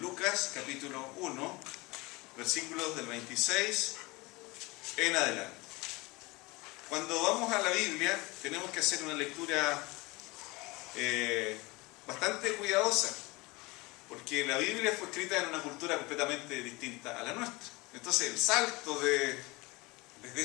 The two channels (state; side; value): quieter; right; 23.6 dB